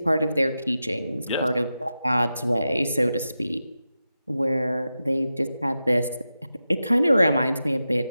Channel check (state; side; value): inverted; both; correlation -0.91